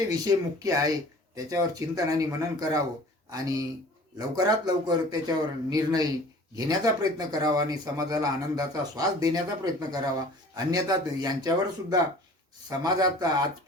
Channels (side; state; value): both; normal; correlation 0.46